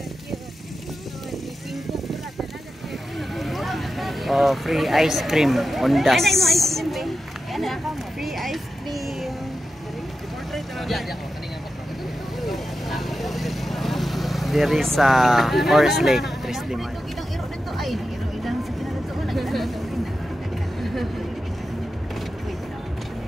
Ni Pingko pula talaga. Oh, free ice cream on das. Free ice cream. There is a Forest Lake, Tres de Mayo.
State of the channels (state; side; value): normal; both; correlation 0.91